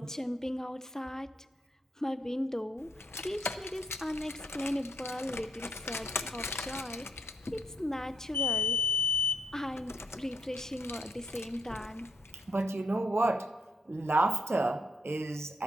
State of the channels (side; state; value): both; normal; correlation 0.73